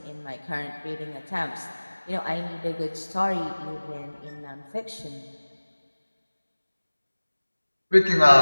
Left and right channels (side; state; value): both; inverted; correlation -1.00